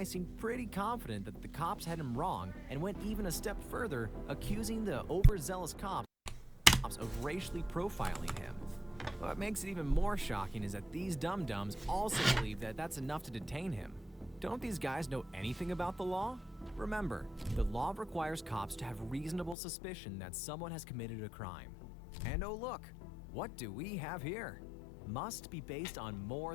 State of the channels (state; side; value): drops out; right; at 19.6 s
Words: seemed pretty confident that the cops had him wrong and went even a step further, accusing the overzealous cops of racially profiling him. What makes it even more shocking is that these dum-dums also believe that that's enough to detain him. Don't these guys know anything about the law? Remember, the law requires cops to have reasonable suspicion that someone has committed a crime. And oh look, what do we have here? Must be based on